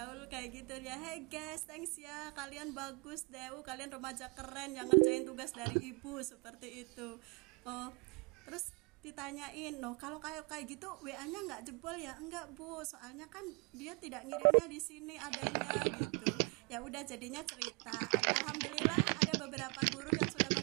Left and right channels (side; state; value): left; quieter; 32.7 dB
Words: kayak gitu ya. "Hey guys, thanks ya, kalian bagus deh, kalian remaja keren yang ngerjain tugas dari ibu," seperti itu. Terus ditanyain, kalau kayak gitu WA-nya nggak jebol ya? "Enggak Bu, soalnya kan dia tidak ngirimnya di sini adanya," gitu. Ya udah, jadinya cerita. Alhamdulillah ada beberapa guru yang sudah